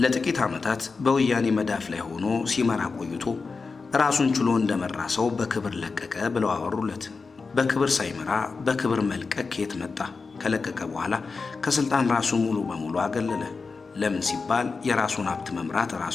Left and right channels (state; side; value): quieter; right; 4.5 dB